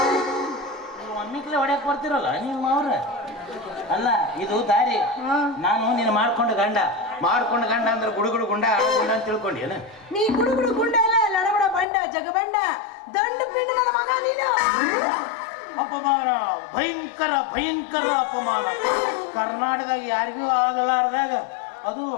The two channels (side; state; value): right; drops out; at 11.9 s